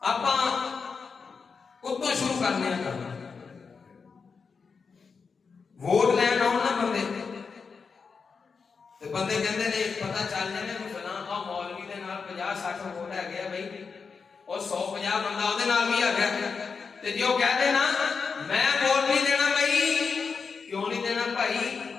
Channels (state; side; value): quieter; right; 5.3 dB